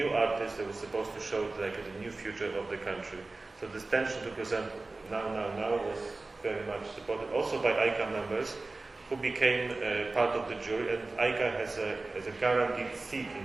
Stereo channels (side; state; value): left; quieter; 3.3 dB